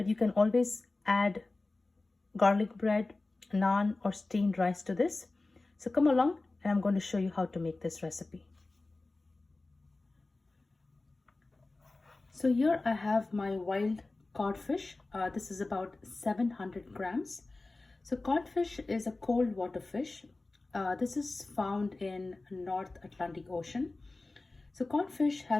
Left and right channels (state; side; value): quieter; right; 3.2 dB